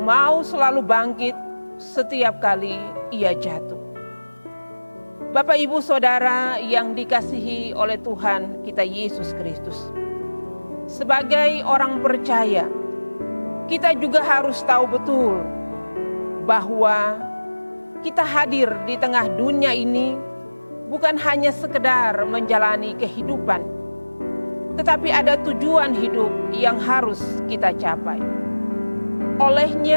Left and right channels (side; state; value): both; inverted; correlation -1.00